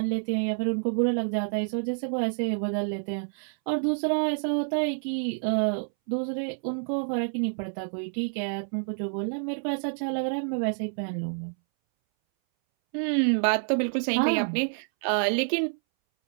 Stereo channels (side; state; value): left; silent; 59 dB below the other